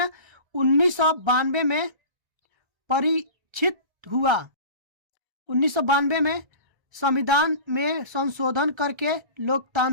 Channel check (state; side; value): late; left; 1.3 ms